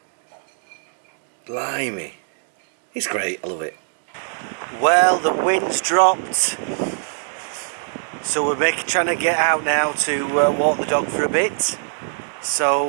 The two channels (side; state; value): left; silent; digital silence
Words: Blimey. It's great, I love it. Well, the wind's dropped. So we're trying to get out now to walk the dog for a bit.